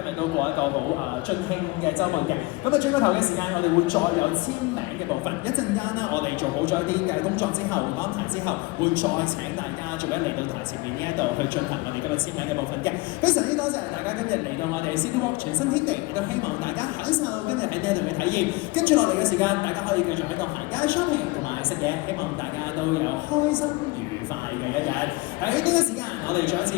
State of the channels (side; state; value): right; quieter; 23.3 dB